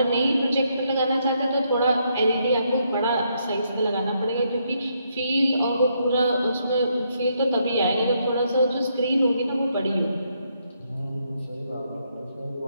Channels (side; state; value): both; inverted; correlation -0.76